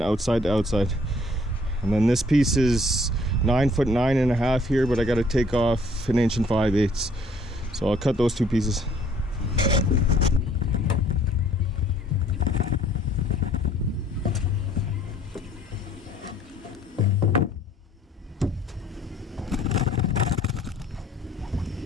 outside to outside. And then this piece is 9'9.5" here, but I got to take off 1 5/8 inches. So I'll cut those two pieces.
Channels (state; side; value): normal; both; correlation 0.59